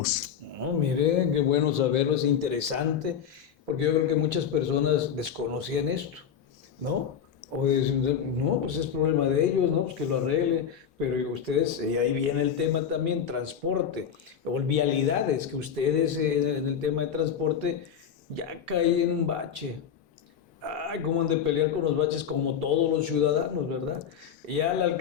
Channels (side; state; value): right; quieter; 8.0 dB